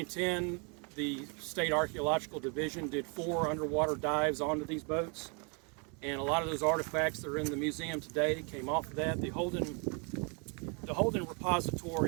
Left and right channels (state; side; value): quieter; left; 35.0 dB